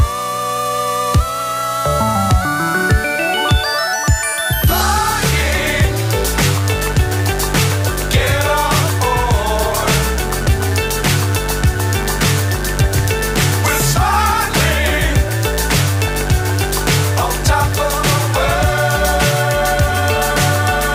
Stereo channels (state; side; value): identical; both; correlation 1.00